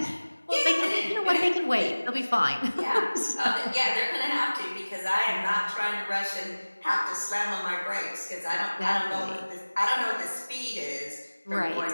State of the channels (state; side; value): inverted; both; correlation -1.00